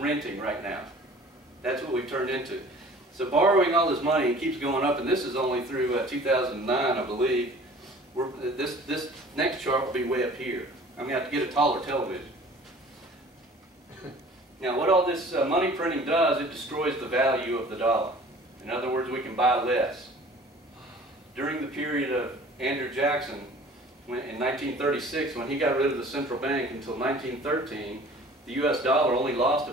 right now. That's what we've turned into. So borrowing all this money, it keeps going up, and this is only through 2009, I believe. This next chart will be way up here. I'm going to have to get a taller television. Now what all this money printing does, it destroys the value of the dollar. In other words, we can buy less. During the period of Andrew Jackson, in 1936, when he got rid of the central bank until 1913, the US dollar only lost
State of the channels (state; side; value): normal; both; correlation 0.48